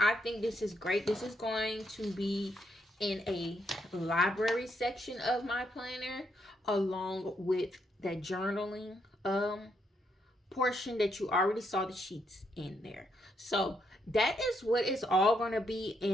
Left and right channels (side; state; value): both; normal; correlation 0.77